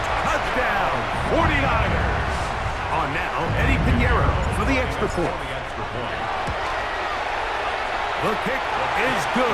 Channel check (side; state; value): both; identical; correlation 1.00